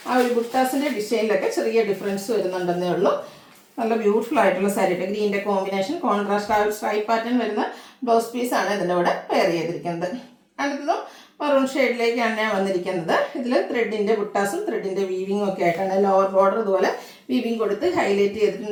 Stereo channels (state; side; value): identical; both; correlation 1.00